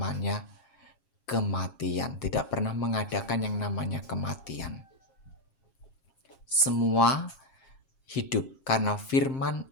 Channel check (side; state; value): right; late; 7.6 ms